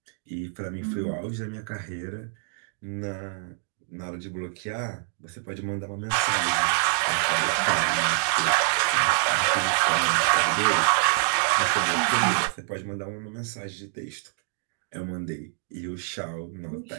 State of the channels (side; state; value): left; silent; digital silence